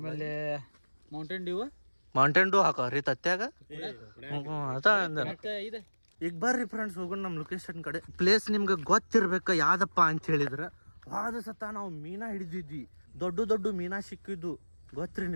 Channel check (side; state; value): both; inverted; correlation -1.00